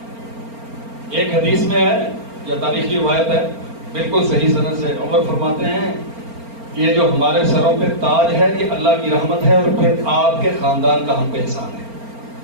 ایک حدیث میں ہے یا تاریخی روایت ہے بالکل صحیح سند سے، عمر فرماتے ہیں یہ جو ہمارے سروں پہ تاج ہے یہ اللہ کی رحمت ہے، اور پھر آپ کے خاندان کا ہم پہ احسان ہے۔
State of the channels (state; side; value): late; left; 4.4 ms